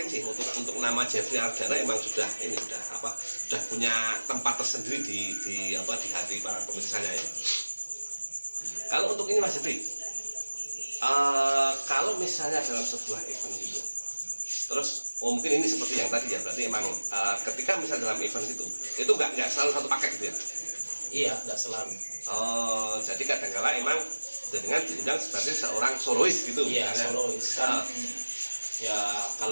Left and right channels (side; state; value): both; inverted; correlation -1.00